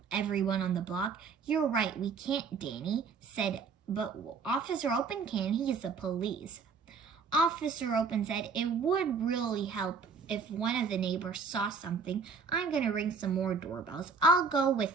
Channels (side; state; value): left; quieter; 5.2 dB